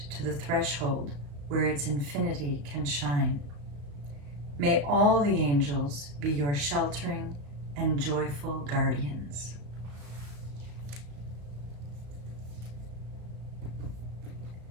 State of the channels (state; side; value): late; left; 35 ms